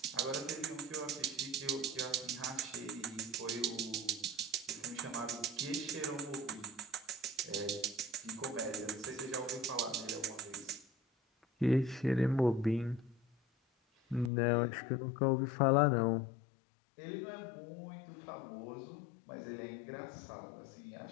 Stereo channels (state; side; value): drops out; right; at 14.3 s